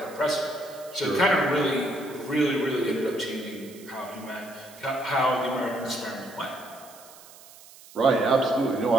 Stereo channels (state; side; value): noise; right; hiss, 21 dB below the sound